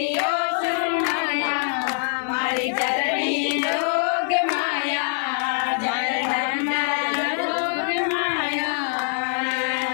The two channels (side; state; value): right; silent; digital silence